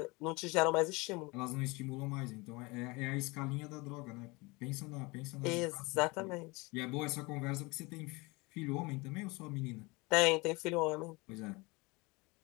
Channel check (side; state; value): right; quieter; 25.5 dB